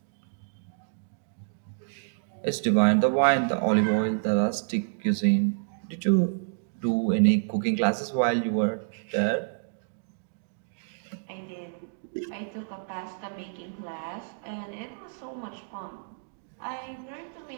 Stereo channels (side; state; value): left; silent; digital silence